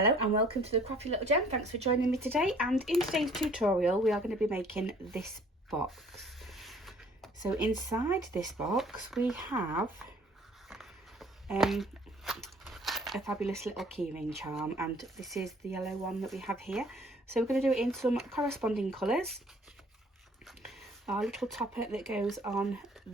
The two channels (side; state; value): both; normal; correlation 0.56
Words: and welcome to the Crafty Little Gem. Thanks for joining me today, and in today's tutorial we are going to be making this box. So inside this box we have a fabulous little keyring charm, and this is the yellow one that we have here. So we're going to do it in some corresponding colours. Our little topper that goes on